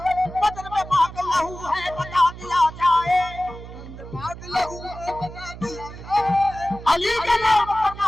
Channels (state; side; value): noise; right; hum, 13 dB below the sound